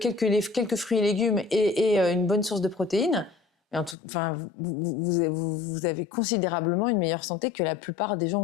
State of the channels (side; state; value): right; drops out; at 4.0 s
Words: fruits et légumes et une bonne source de protéines, enfin, vous avez considérablement une meilleure santé que la plupart des